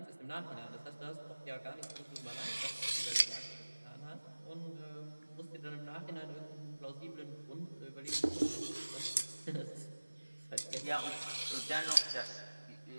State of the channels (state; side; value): inverted; both; correlation -1.00